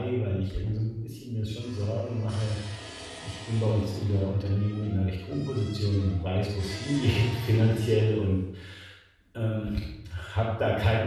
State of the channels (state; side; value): identical; both; correlation 1.00